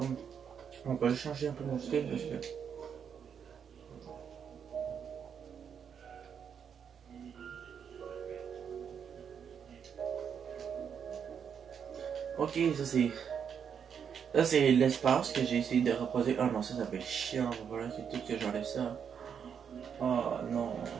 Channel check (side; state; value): left; quieter; 7.5 dB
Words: on peut changer un peu mon style parce que. Ok, ça c'est. Ça c'est l'espace que j'ai essayé de reposer. Ah non, ça fait chiant. Voilà, c'est tout que j'enlève ça. Oh non,